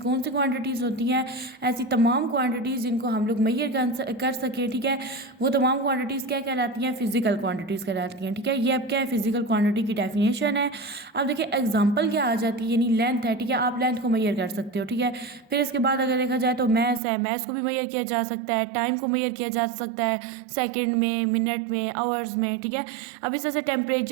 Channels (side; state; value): left; drops out; at 17.0 s